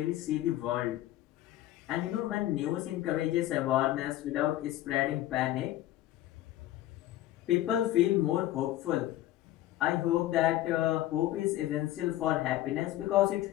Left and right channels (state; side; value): quieter; right; 14.5 dB